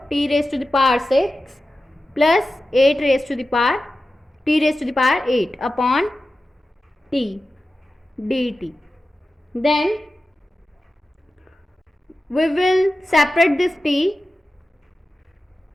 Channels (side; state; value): both; normal; correlation 0.93